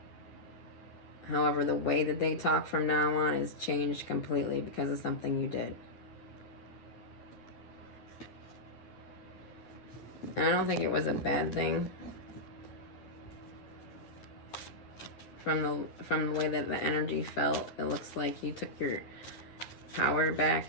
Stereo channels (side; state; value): right; late; 10 ms